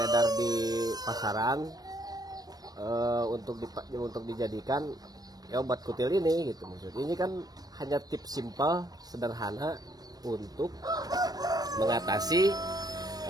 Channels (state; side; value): late; left; 0.19 ms